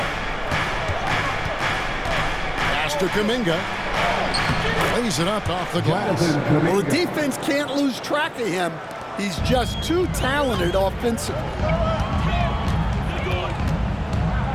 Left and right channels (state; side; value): identical; both; correlation 1.00